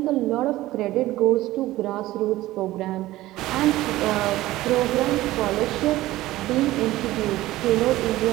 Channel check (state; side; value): quieter; left; 16.7 dB